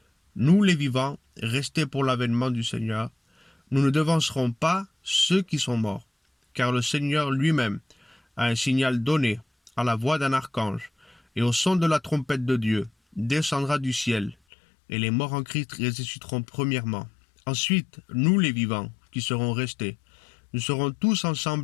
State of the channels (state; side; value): drops out; right; at 14.4 s